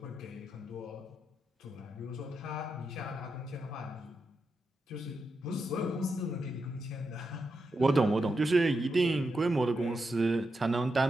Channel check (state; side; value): normal; both; correlation 0.86